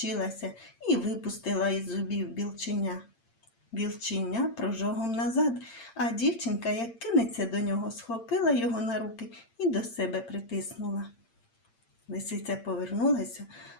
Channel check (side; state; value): right; late; 8.8 ms